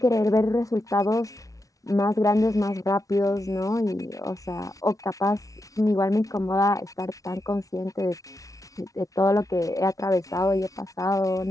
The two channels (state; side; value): late; right; 0.17 ms